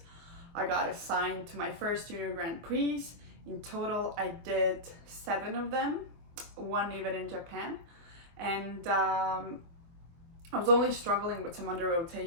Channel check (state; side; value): late; left; 24 ms